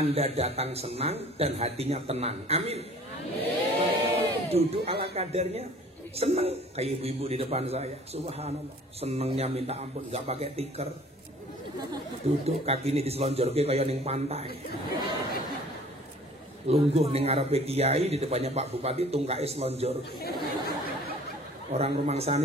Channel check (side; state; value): both; normal; correlation 0.50